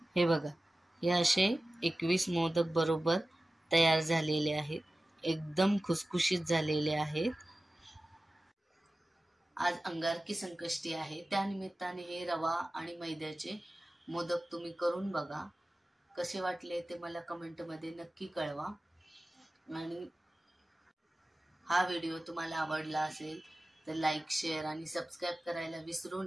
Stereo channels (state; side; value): normal; both; correlation 0.96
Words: हे बघा, हे असे 21 मोदक बरोबर तयार झालेले आहेत. एकदम खुसखुशीत झालेले आहेत. आज अंगारकी संकष्टी आहे, त्यानिमित्ताने हे रवा आणि मैद्याचे मोदक तुम्ही करून बघा. कसे वाटले ते मला कमेंटमध्ये नक्की कळवा. आणि हा व्हिडिओ तुम्हाला आवडला असेल तर लाईक, शेअर आणि सबस्क्राईब करायला विसरू